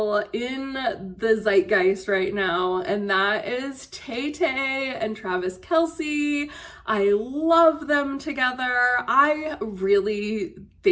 in the zeitgeist right now, and that is Tay-Tay and Travis Kelce. I love them together. I really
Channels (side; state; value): both; identical; correlation 1.00